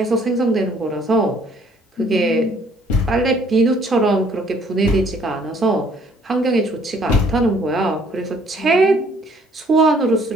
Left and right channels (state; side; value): normal; both; correlation 0.61